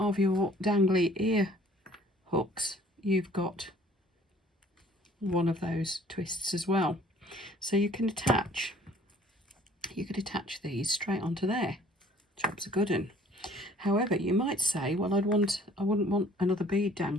your dangly ear hooks, you've got one of those twists as well. So you can attach these straight onto there. Job's a good un. However, you might say, well, I wouldn't want another bead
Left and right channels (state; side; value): normal; both; correlation 0.55